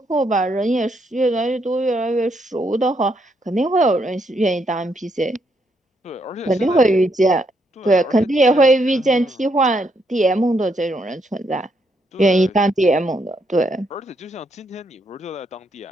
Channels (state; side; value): normal; both; correlation 0.76